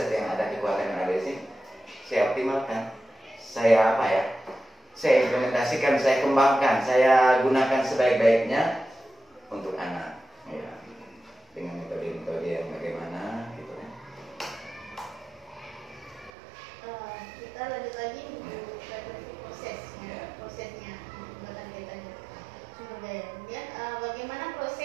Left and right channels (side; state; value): left; drops out; at 16.3 s